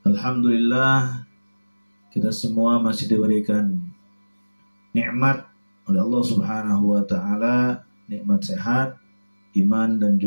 Alhamdulillah, kita semua masih diberikan nikmat oleh Allah Subhanahu wa taala, nikmat sehat, iman dan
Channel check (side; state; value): both; inverted; correlation -1.00